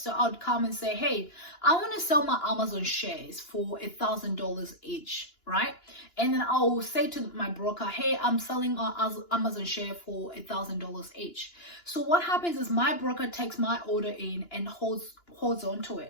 I'd come and say, hey, I want to sell my Amazon shares for $1,000 each, right? And then I'll say to my broker, hey, I'm selling an Amazon share for $1,000 each. So what happens is my broker takes my order in and holds on to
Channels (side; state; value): right; late; 2.9 ms